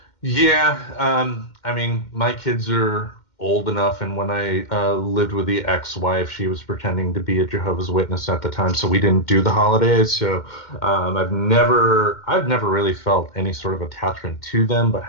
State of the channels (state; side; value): late; right; 2.1 ms